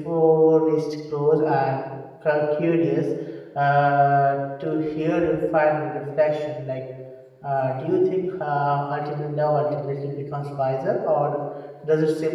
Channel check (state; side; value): identical; both; correlation 1.00